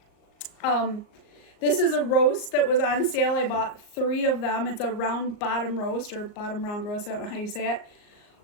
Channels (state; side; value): late; right; 38 ms